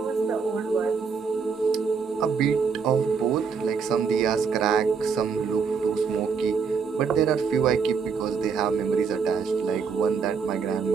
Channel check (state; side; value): quieter; left; 5.7 dB